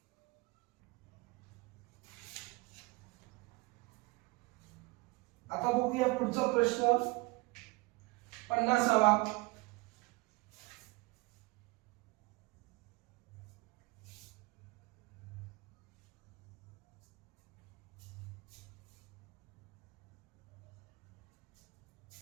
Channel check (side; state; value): left; quieter; 24.8 dB